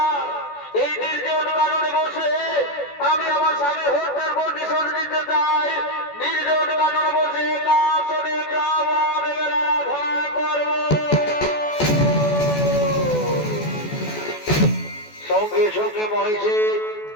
এই নির্জন কারণে বসে আমি আমার স্বামী হত্যার প্রতিশোধ নিতে চাই। নির্জন কারণে বসে কাশনে ব্রাহ্মণ আরাধনা করব। সঙ্গে সঙ্গে মহিষে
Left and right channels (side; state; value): right; late; 14 ms